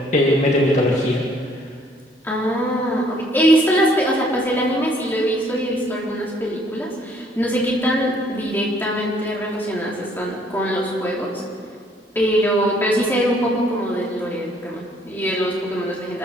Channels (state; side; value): normal; both; correlation 0.63